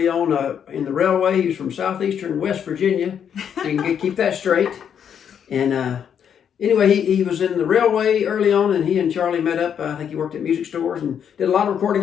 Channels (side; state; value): right; quieter; 8.3 dB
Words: on in the railway. He was from southeastern West Virginia, so you can keep that straight. And anyway, he was in the railway early on, and he and Charlie met up. I think he worked at music stores and did a lot of